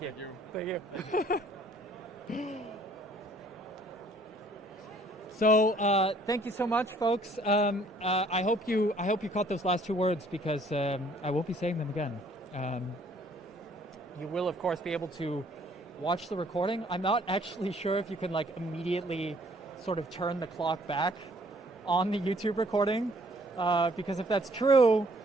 you. Thank you. So thank you so much, folks. I hope you caught those last 2 words, because I won't be saying them again. You will, of course, be able to watch the recording. I'm not actually sure if you can immediately sort of turn the clock back on the YouTube recording, because if that's true,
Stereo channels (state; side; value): normal; both; correlation 0.60